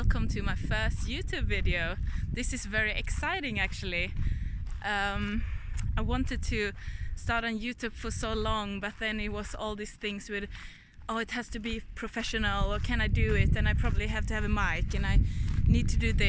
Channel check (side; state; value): both; identical; correlation 1.00